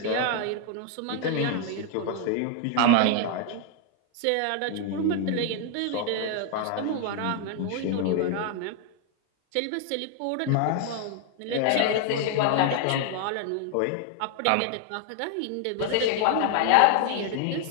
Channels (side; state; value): both; different; correlation 0.00